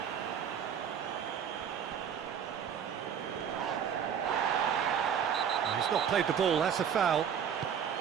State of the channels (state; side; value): quieter; left; 8.1 dB